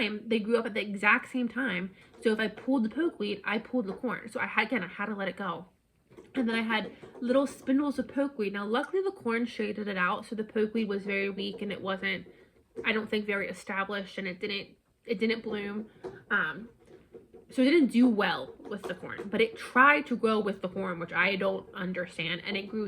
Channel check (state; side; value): identical; both; correlation 1.00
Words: they grew up at the exact same time. So if I pulled the pokeweed, I pulled the corn. So I had to let it go. And then I had little spindles of pokeweed. Now, luckily the corn shaded it out, so the pokeweed was very weak and it wasn't, I don't think, very established, and it didn't bloom. So it didn't do well with the corn, but it tried to grow with the corn, which I don't understand, and it